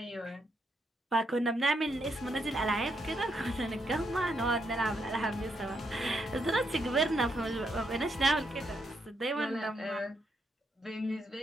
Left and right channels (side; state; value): both; normal; correlation 0.78